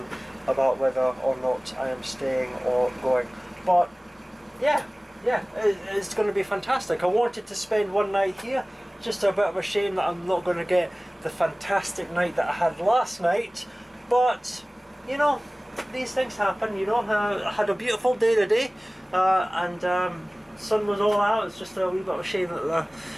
about whether or not I am staying or going. But yeah, it's going to be fantastic. I wanted to spend one night here. Just a bit of a shame that I'm not going to get the fantastic night that I had last night. But you know, these things happen, you know. I had a beautiful day today, and sun was all out. It's just a wee bit of a shame that the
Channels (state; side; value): normal; both; correlation 0.98